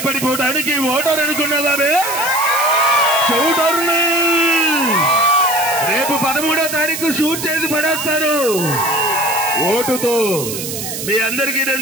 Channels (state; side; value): noise; right; hiss, 6 dB below the sound